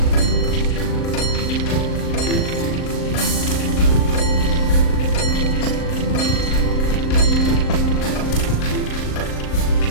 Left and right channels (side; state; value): right; late; 38 ms